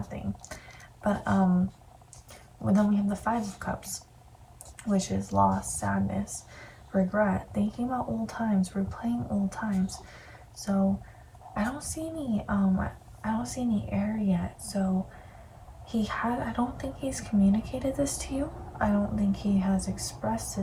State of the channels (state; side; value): identical; both; correlation 1.00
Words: thing. But well, then we have the Five of Cups, which is loss, sadness, regret, thinking about old times, replaying old times. So I don't see any air yet. So I don't think he's communicated this to you. I don't think he has expressed